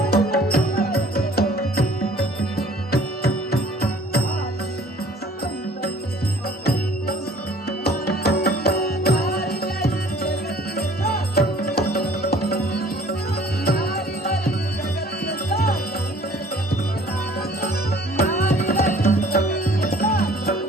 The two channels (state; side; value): normal; both; correlation 0.53